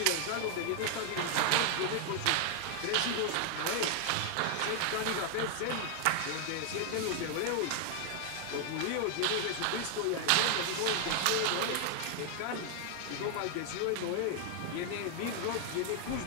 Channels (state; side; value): different; both; correlation 0.00